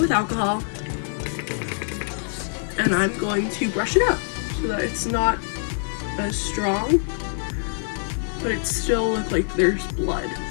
alcohol and I'm going to brush it out so that it's not as strong, but it still looks like there's blood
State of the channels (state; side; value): silent; right; digital silence